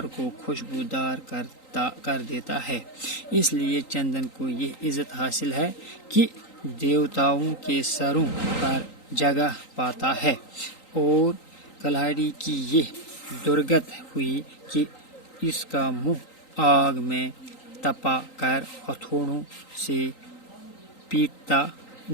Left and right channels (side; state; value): right; late; 3.9 ms